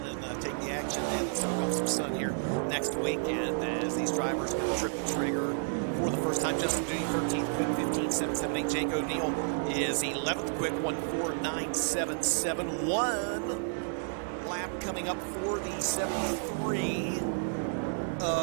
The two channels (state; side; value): silent; left; digital silence